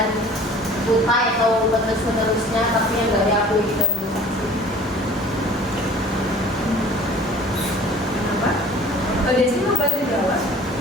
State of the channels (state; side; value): normal; both; correlation 0.47